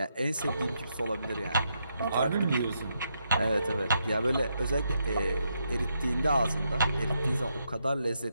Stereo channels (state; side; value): inverted; both; correlation -0.80